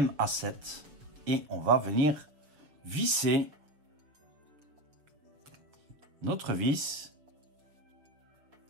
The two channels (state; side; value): late; left; 6.8 ms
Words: et on va venir visser notre vis.